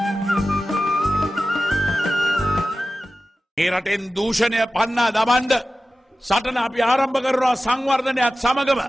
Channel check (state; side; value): normal; both; correlation 0.95